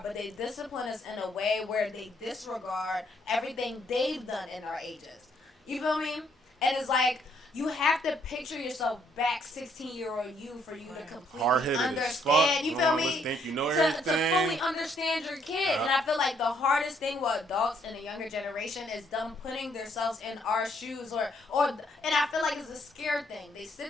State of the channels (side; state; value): both; normal; correlation 0.69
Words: but they discipline us in a way where they disregard everything they've done in our ages. You feel me? And it's like, you have to picture yourself back 16-year-old you for you to completely Hard-headed as understand. fuck. You You feel don't me? always think you know to everything. fully understand your kid. Yeah. And I feel like the hardest thing with adults in the younger generation is them putting themselves in our shoes and I feel like it's a scared thing. They